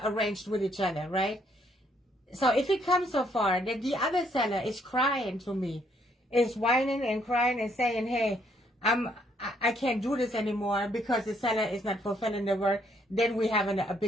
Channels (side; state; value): both; normal; correlation 0.70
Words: arranged with each other, right? So if it comes so far that the other seller is crying to me, is whining and crying and saying, hey, I can't do this anymore because the seller is not fulfilling the word, then we have a